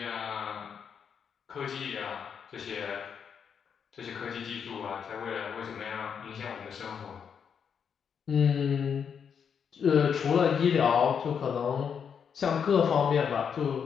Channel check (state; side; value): quieter; right; 7.1 dB